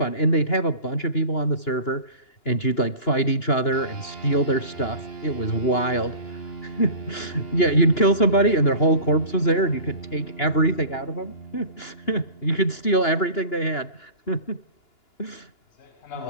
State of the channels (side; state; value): right; late; 2.9 ms